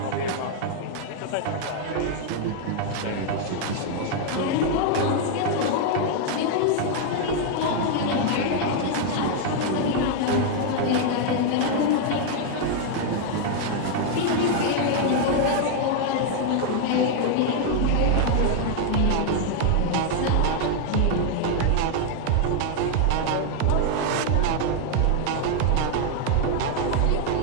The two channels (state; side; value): different; both; correlation 0.00